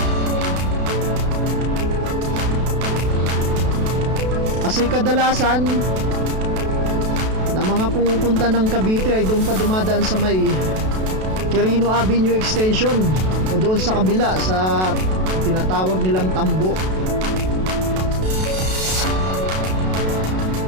Kasi kadalasan na mga pumupunta ng Cavite ay doon pa dumadaan sa may Quirino Avenue Extension o doon sa kabila sa tinatawag nilang Tambo.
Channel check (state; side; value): late; left; 32 ms